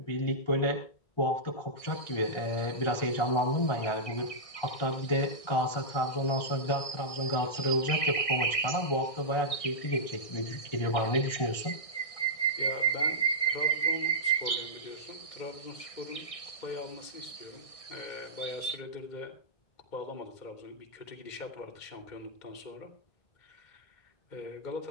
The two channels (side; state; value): right; late; 1.6 ms